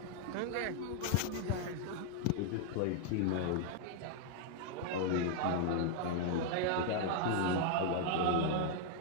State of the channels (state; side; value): different; both; correlation 0.00